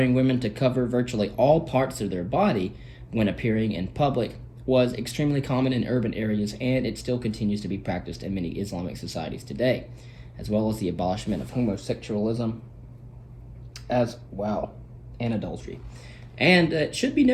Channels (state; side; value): identical; both; correlation 1.00